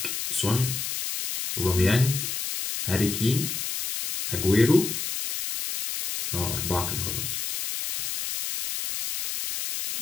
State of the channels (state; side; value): noise; left; hiss, 4 dB below the sound